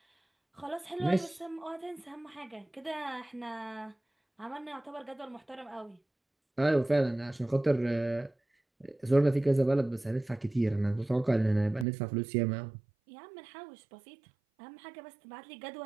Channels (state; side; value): drops out; left; at 11.9 s